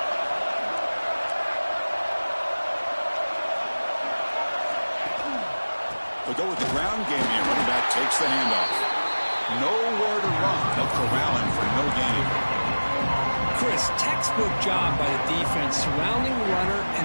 They'll go with the ground game here. Running back takes the handoff. Nowhere to run. They'll corral him for no gain. Chris, textbook job by the defense surrounding the runner and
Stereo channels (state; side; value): inverted; both; correlation -1.00